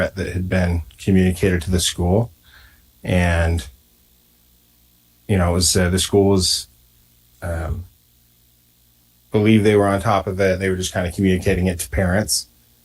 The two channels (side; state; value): both; identical; correlation 1.00